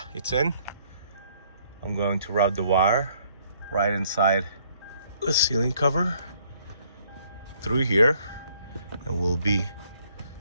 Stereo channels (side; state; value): both; inverted; correlation -0.65